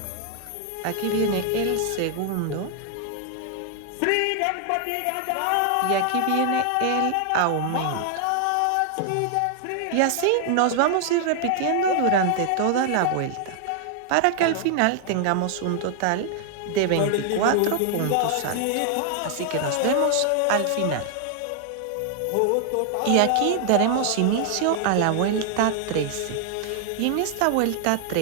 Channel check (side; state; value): both; different; correlation 0.00